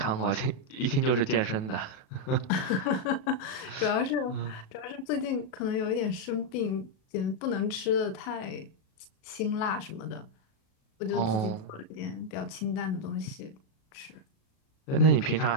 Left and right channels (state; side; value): late; right; 37 ms